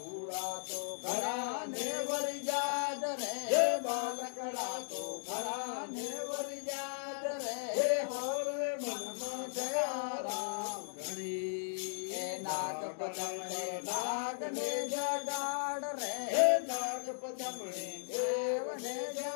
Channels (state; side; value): silent; right; digital silence